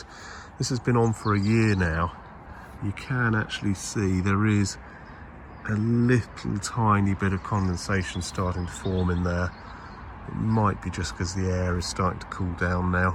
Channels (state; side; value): identical; both; correlation 1.00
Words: This has been on for a year now. You can actually see there is a little tiny bit of condensation starting to form in there. It might be just because the air is starting to cool down now.